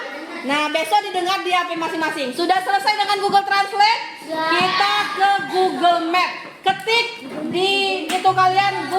Nah, besok didengar di HP masing-masing. Sudah selesai dengan Google Translate? Kita ke Google Map. Ketik di itu kalian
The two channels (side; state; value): both; identical; correlation 1.00